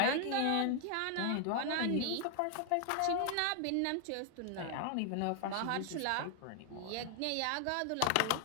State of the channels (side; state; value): both; different; correlation 0.00